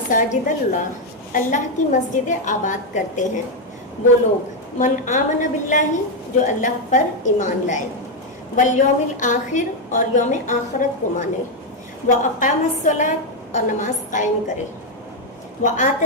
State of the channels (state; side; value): normal; both; correlation 0.03